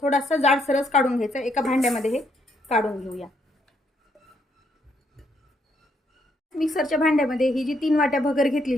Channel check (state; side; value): normal; both; correlation 0.73